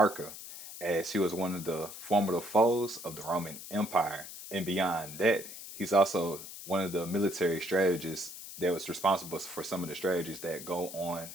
as he was one of the formidable foes of the Roman Empire. And beyond that, he's also one of the military strategists that was responsible for some of the strategies that go on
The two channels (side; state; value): left; noise; hiss, 12 dB below the sound